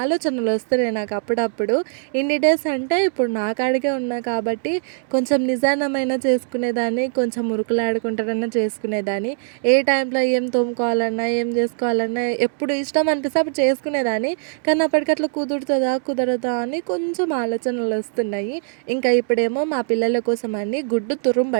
వస్తున్నాయి నాకు అప్పుడప్పుడు. ఇన్ని డేస్ అంటే ఇప్పుడు నా కాడికే ఉన్నా కాబట్టి కొంచెం నిదానమైన చేసుకునేదాన్ని, కొంచెం ఉరుకులాడుకుంటారన్నా చేసుకునేదాన్ని. ఏ టైంలో ఏం తోముకోవాలన్నా, ఏం చేసుకోవాలన్నా ఎప్పుడు ఇష్టం అనిపిస్తే అప్పుడు చేసుకునేదాన్ని. కానీ అప్పటికట్లా కుదురుతుందా కుదరదా అని కొంచెం ఆలోచనలు వస్తున్నాయి. ఇంకా ఇప్పుడేమో మా పిల్లల కోసం అని గుడ్డు తురుము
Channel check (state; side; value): silent; left; digital silence